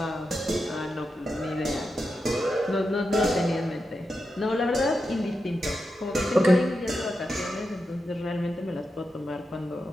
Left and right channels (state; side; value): normal; both; correlation 0.88